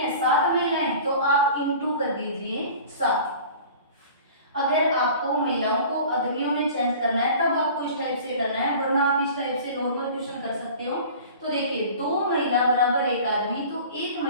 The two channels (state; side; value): inverted; both; correlation -0.42